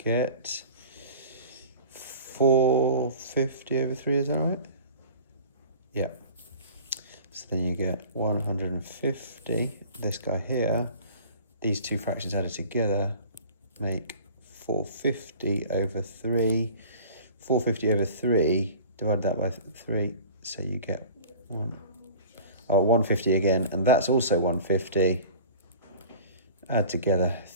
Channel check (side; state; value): both; inverted; correlation -0.43